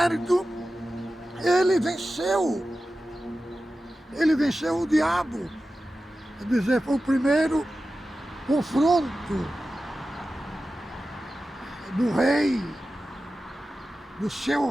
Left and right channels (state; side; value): normal; both; correlation 0.94